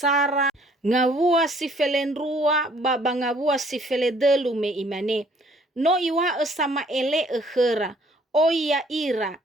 ngavua si felendrua baba ngavua si feledelu me imane. No iwa sama ele ekhera o ia ira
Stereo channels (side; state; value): both; normal; correlation 0.60